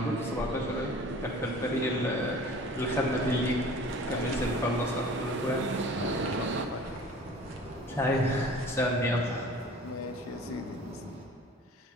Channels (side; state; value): both; normal; correlation 0.45